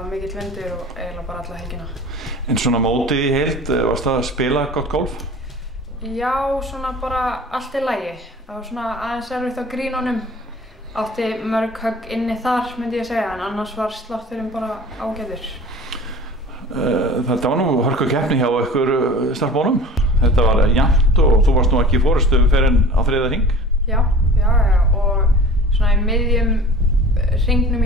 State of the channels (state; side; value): normal; both; correlation 0.42